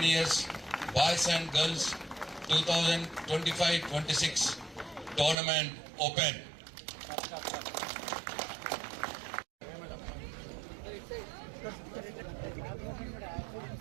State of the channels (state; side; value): drops out; left; at 5.4 s